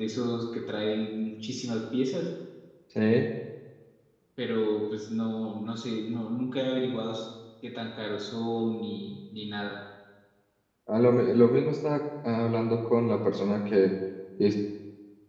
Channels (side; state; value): both; identical; correlation 1.00